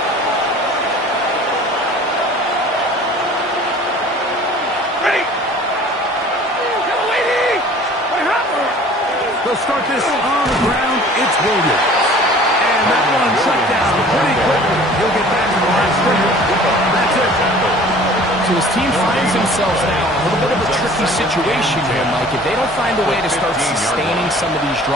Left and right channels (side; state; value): both; normal; correlation 0.48